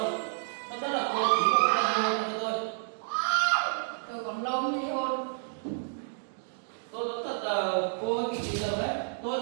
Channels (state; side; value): silent; left; digital silence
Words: rồi. Tốt nhất là cô ký một cái đơn ly hôn cho tôi. Tôi còn lâu mới ly hôn. Tôi nói thật là cô hơi bị giờ đấy, tôi